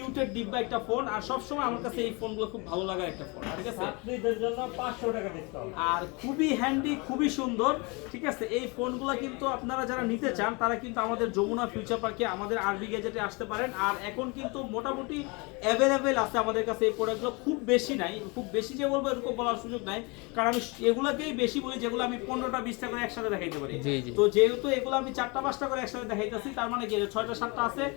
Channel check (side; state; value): right; quieter; 28.7 dB